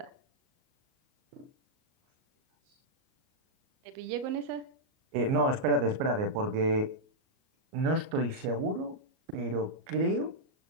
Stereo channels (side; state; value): left; late; 38 ms